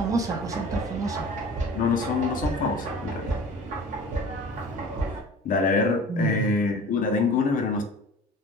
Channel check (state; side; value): normal; both; correlation 0.42